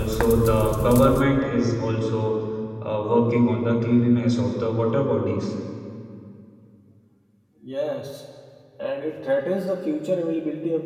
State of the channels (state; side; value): identical; both; correlation 1.00